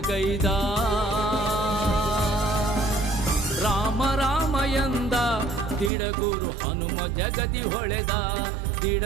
ಗೈದ. ರಾಮ ರಾಮ ಎಂದ ದಿಡಗುರು ಹನುಮ ಜಗದಿ ಹೊಳೆದ,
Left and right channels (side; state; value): left; drops out; at 5.9 s